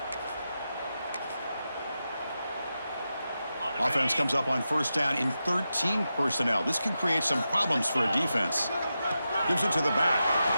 Offense comes up on first down in 13 personnel. This can create some problems for a defense. Gives it to the back.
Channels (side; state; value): both; inverted; correlation -0.90